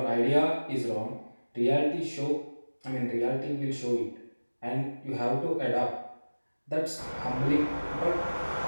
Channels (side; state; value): both; inverted; correlation -1.00